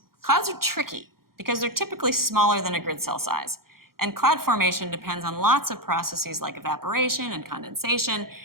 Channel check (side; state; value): left; late; 0.93 ms